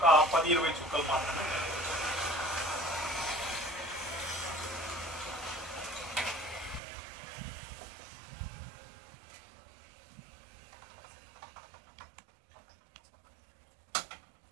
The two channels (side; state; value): left; drops out; at 6.8 s